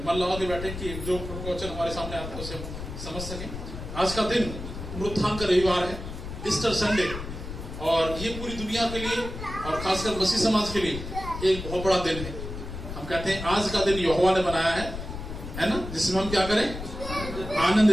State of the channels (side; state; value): left; noise; rumble, 8 dB below the sound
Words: मन लगा के बैठे कि जो प्रवचन हमारे सामने आता है उसे हम समझ सकें। आज का दिन पुनरुत्थान का रविवार है, ईस्टर संडे, और ये पूरी दुनिया के लिए और खासकर मसीह समाज के लिए एक बहुत बड़ा दिन है। हम कहते हैं आज का दिन यहोवा ने बनाया है ना, जिसमें हम क्या करें,